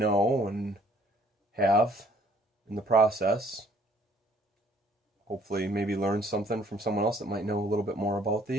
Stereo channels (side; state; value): both; normal; correlation 0.60